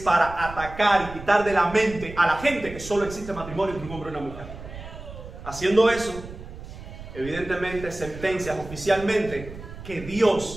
atacar y quitar de la mente a la gente que solo existe matrimonio entre un hombre y una mujer. Haciendo eso, evidentemente sentencias oficialmente que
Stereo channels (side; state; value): right; noise; rumble, 13 dB below the sound